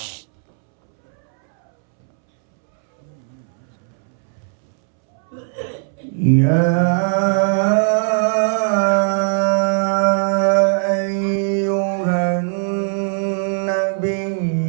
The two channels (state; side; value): silent; left; 67 dB below the other